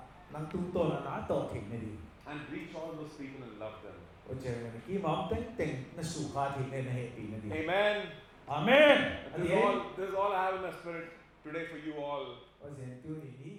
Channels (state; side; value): identical; both; correlation 1.00